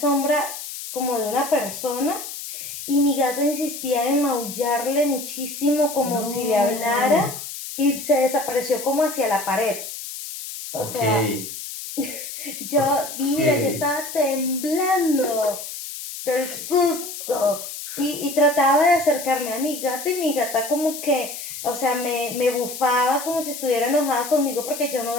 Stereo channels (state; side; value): noise; left; hiss, 9 dB below the sound